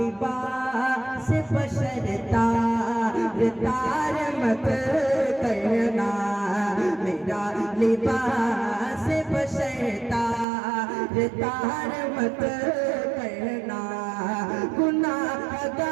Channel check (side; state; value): left; drops out; at 10.5 s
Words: बशर तार मत करना, मेरा लिबास बशर तार मत करना।